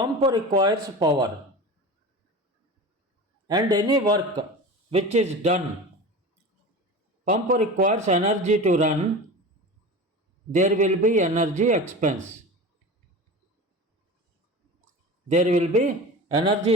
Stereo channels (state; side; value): normal; both; correlation 0.31